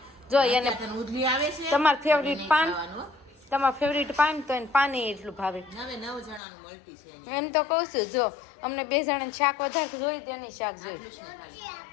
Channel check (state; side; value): drops out; right; at 6.4 s